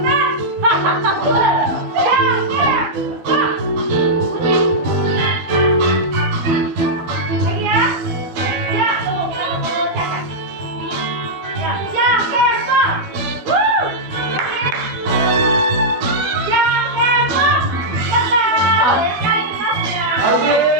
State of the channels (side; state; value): left; late; 12 ms